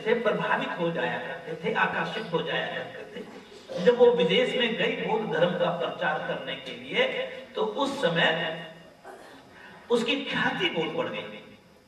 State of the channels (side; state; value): both; identical; correlation 1.00